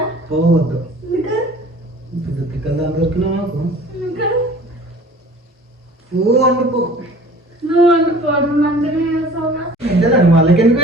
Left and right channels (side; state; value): both; normal; correlation 0.46